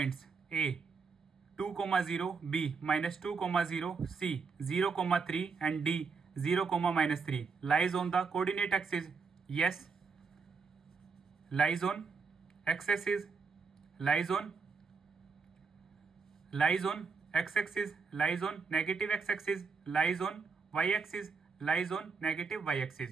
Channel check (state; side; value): quieter; left; 5.1 dB